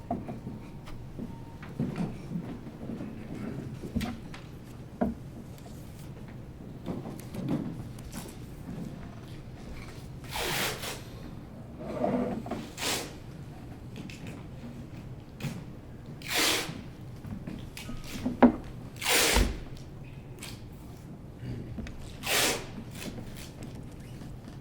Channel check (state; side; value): identical; both; correlation 1.00